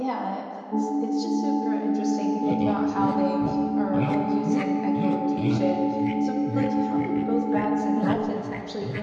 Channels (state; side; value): identical; both; correlation 1.00